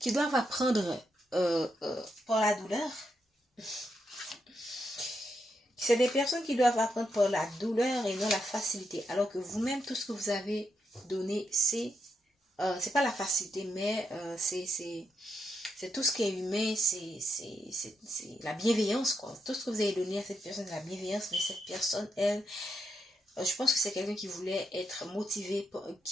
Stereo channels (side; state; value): both; normal; correlation 0.82